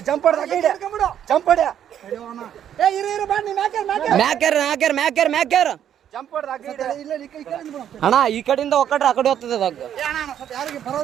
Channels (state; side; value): quieter; left; 9.9 dB